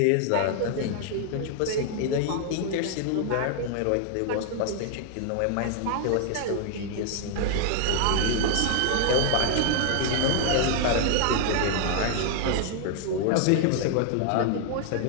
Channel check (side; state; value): both; different; correlation 0.00